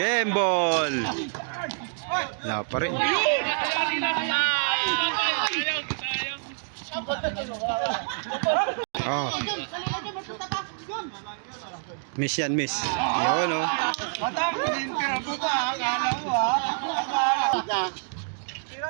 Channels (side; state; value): left; silent; digital silence